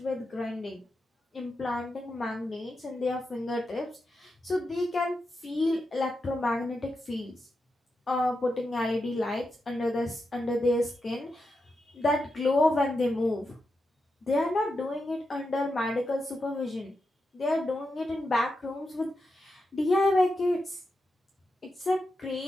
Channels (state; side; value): normal; both; correlation 0.87